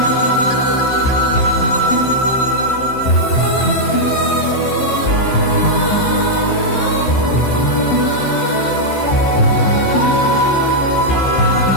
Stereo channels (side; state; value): right; late; 15 ms